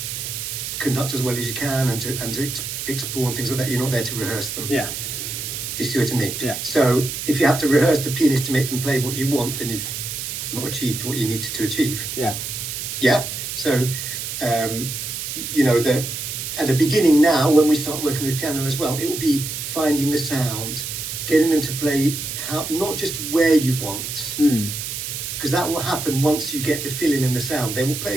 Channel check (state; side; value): noise; right; hiss, 5 dB below the sound